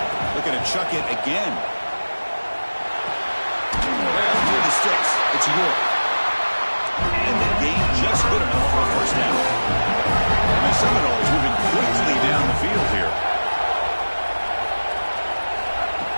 Looking to chuck it again. Through the sticks. It's York. And the gain just good enough for a first down. And the Seminoles moving quickly down the field here.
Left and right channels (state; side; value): inverted; both; correlation -1.00